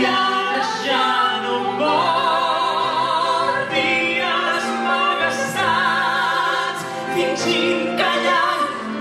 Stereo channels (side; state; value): both; identical; correlation 1.00